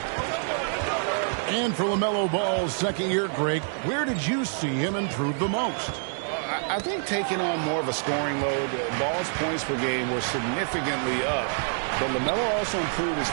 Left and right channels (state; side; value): silent; left; 59 dB below the other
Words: And for LaMelo Ball's second year, Greg, where did you see him improve the most? I think taking on more of a scoring load. Ball's points per game were significantly up. But LaMelo also improved his